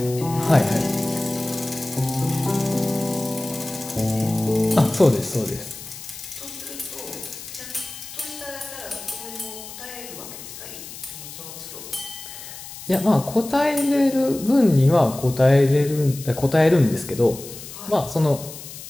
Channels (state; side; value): noise; left; hiss, 13 dB below the sound